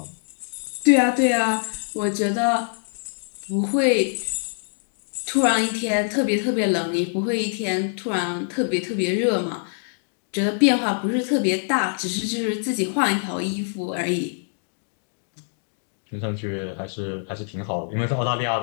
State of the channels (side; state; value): right; silent; digital silence